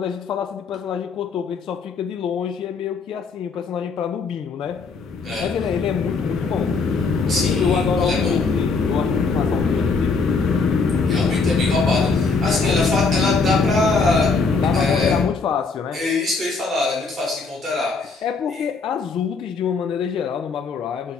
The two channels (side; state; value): right; quieter; 4.5 dB